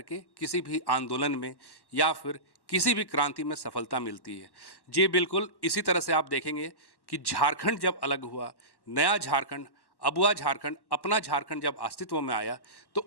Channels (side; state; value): right; late; 1.1 ms